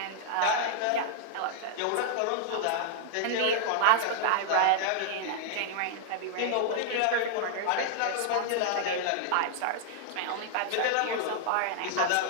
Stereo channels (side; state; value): both; different; correlation -0.01